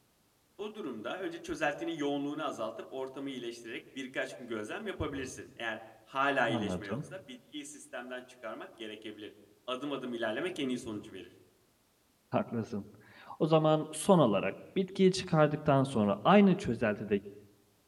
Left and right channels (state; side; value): identical; both; correlation 1.00